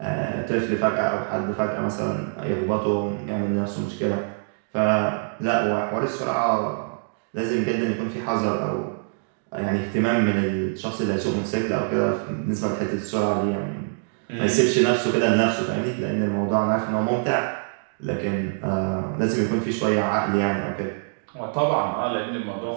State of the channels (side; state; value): left; silent; digital silence